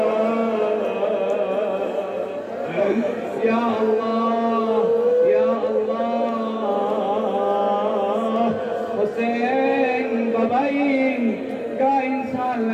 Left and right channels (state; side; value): identical; both; correlation 1.00